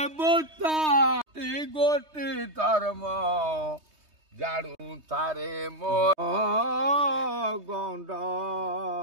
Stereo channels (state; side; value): late; left; 3.2 ms